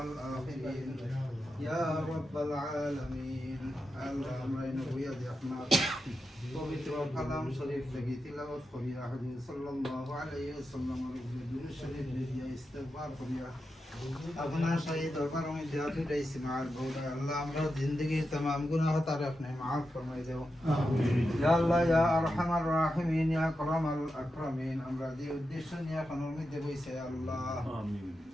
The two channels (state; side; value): normal; both; correlation 0.89